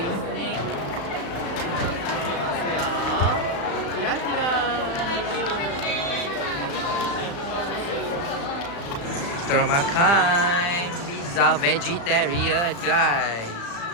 Ya, kira-kira kita orang makan pizza vegetarian guys.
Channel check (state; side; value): late; right; 35 ms